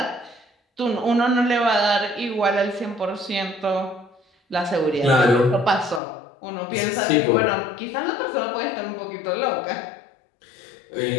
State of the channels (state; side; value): drops out; right; at 6.0 s